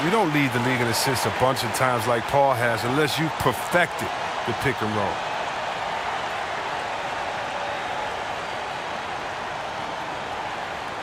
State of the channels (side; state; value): both; identical; correlation 1.00